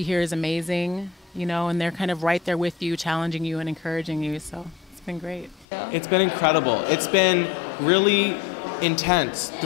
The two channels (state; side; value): drops out; right; at 5.7 s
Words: here is amazing, you know, and they're kind of right there with you, challenging you and encouraging you. So it's been great. It's been incredible. It's been really intense.